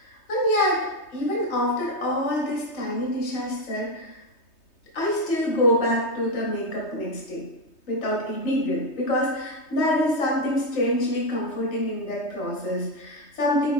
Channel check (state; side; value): late; right; 3.2 ms